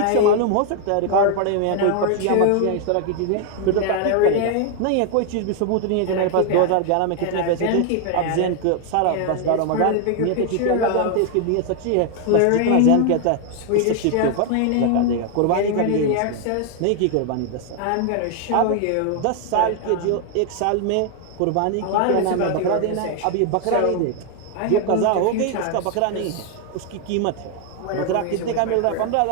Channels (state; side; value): different; both; correlation 0.00